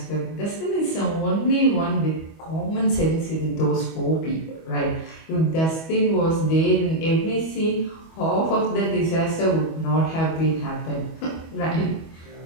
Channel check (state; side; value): late; right; 25 ms